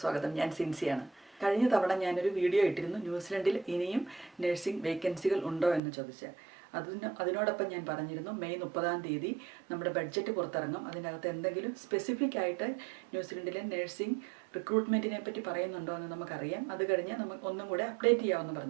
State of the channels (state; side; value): drops out; left; at 5.8 s